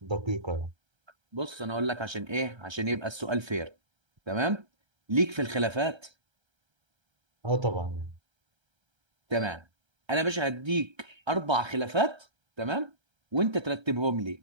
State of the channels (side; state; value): left; late; 1.3 ms